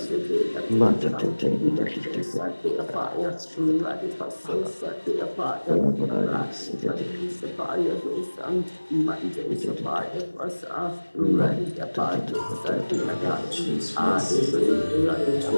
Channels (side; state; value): both; inverted; correlation -1.00